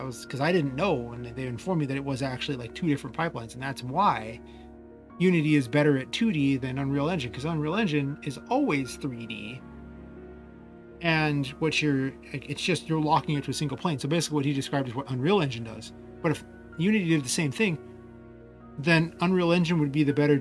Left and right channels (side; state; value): both; identical; correlation 1.00